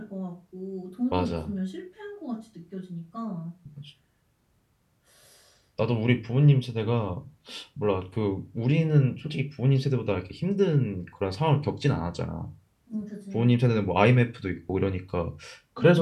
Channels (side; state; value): both; identical; correlation 1.00